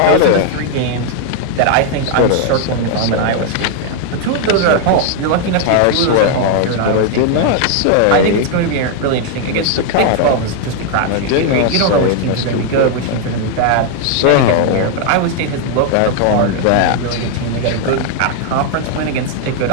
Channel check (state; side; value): different; both; correlation 0.00